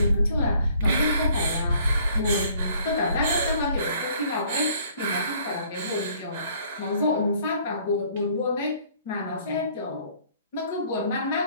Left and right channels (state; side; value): inverted; both; correlation -0.59